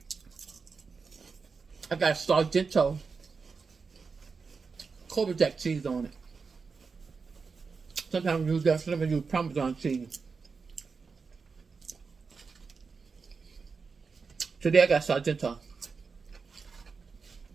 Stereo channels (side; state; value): left; quieter; 5.0 dB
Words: I got Sargento Cobra Jack cheese on it. Sometimes I use that, sometimes I use Parmesan cheese. Today I got Sargento.